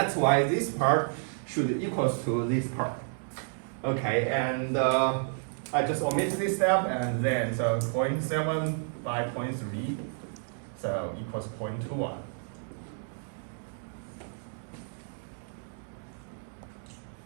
why this part should equals to this part. Okay, and I just omit this step, and then so 0.7 by 0.3, so equals 0.21.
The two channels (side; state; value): left; silent; 57 dB below the other